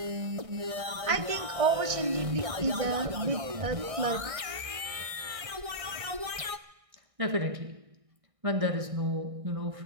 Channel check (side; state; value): left; late; 1.6 ms